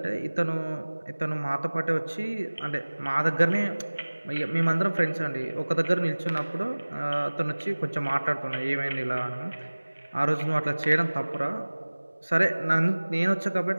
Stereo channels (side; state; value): both; inverted; correlation -1.00